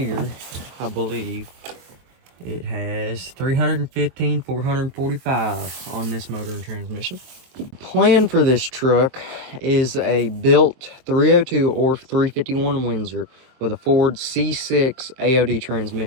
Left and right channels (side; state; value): left; late; 23 ms